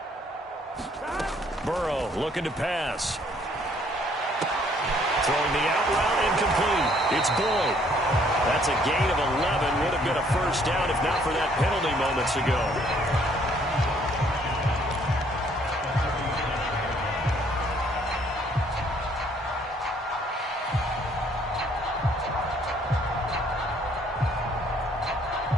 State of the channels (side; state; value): both; normal; correlation 0.63